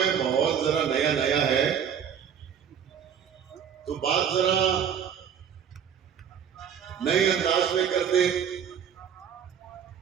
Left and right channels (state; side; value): quieter; left; 8.1 dB